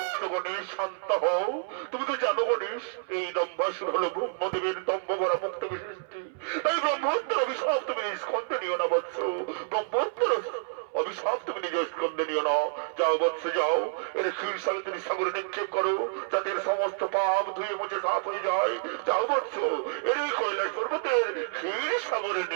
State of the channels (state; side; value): silent; left; 59 dB below the other